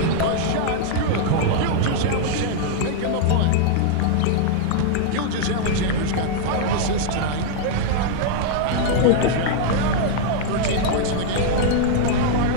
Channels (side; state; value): both; different; correlation -0.01